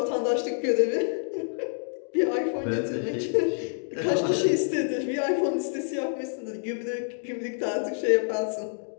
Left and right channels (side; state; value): right; silent; digital silence